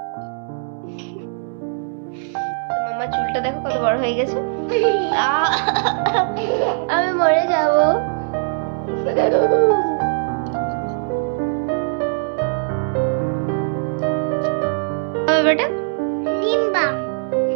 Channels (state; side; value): silent; left; 65 dB below the other